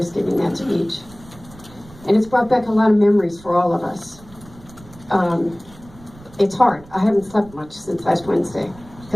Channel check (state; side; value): noise; right; rumble, 22 dB below the sound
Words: giving that speech. And it's brought back a lot of memories for all of us. It's hard. I haven't slept much since last Wednesday